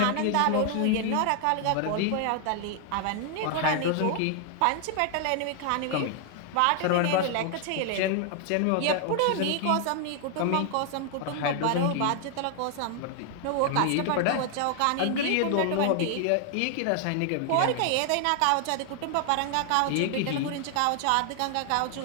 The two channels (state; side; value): different; both; correlation 0.00